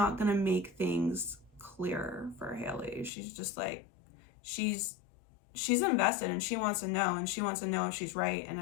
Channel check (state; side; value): drops out; right; at 3.1 s